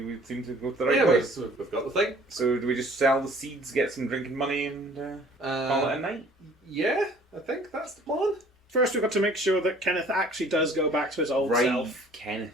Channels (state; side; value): normal; both; correlation 0.53